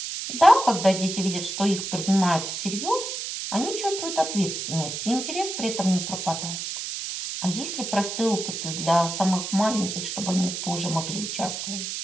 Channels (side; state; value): right; noise; hiss, 5 dB below the sound